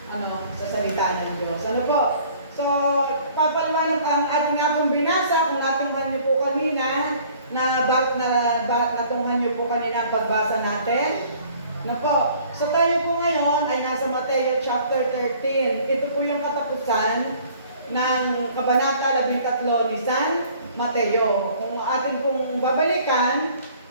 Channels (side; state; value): both; inverted; correlation -0.54